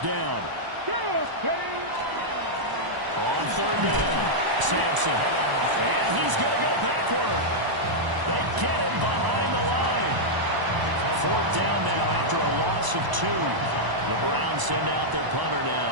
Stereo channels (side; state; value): left; late; 1.0 ms